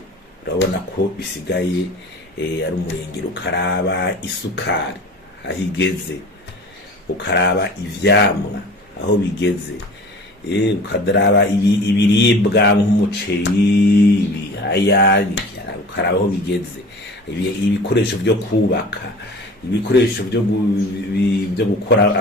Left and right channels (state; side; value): normal; both; correlation 0.41